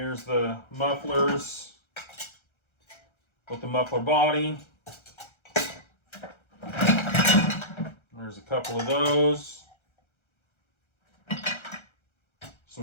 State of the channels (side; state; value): right; late; 1.3 ms